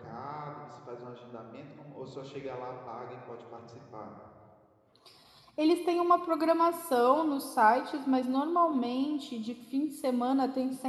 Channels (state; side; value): identical; both; correlation 1.00